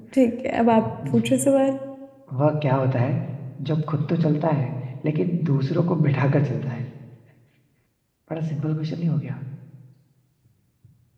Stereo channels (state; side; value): identical; both; correlation 1.00